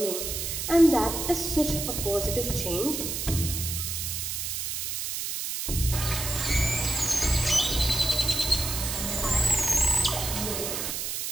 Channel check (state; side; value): noise; right; hiss, 3 dB below the sound